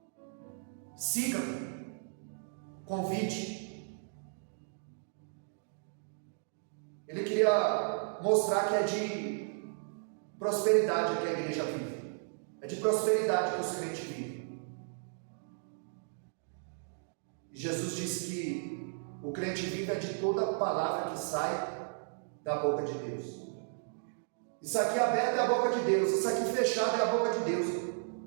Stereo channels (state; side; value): silent; left; digital silence